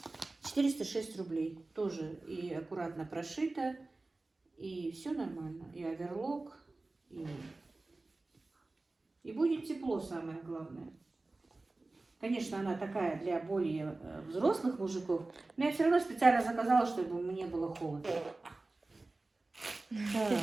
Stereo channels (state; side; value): quieter; left; 3.2 dB